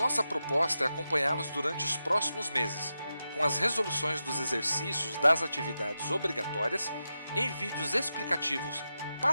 proposta é acompanhá-los durante os próximos meses, com as resoluções dos exercícios das atividades obrigatórias em vídeos explicativos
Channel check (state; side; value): inverted; both; correlation -0.90